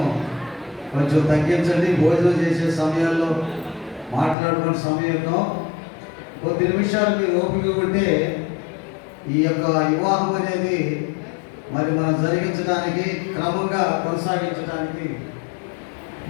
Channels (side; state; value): right; drops out; at 4.4 s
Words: కొంచెం తగ్గించండి. భోజనం చేసే సమయాల్లో మాట్లాడుకునే సమయంలో కొద్ది నిమిషాలు మీరు ఓపిక ఉంటే ఈ యొక్క వివాహం అనేది మరి మనం జరిగించడానికి, క్రమంగా కొనసాగించడానికి